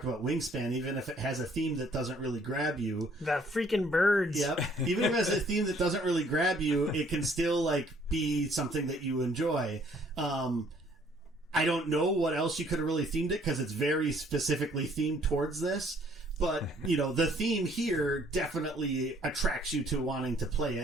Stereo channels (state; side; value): normal; both; correlation 0.61